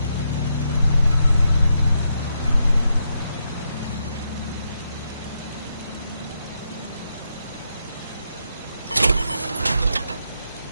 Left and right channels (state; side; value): inverted; both; correlation -0.81